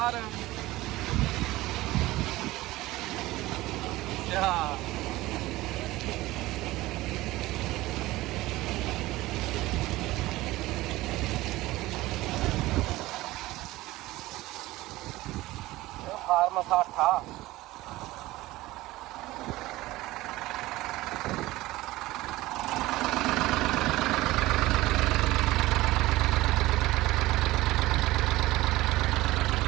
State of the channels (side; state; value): left; quieter; 18.1 dB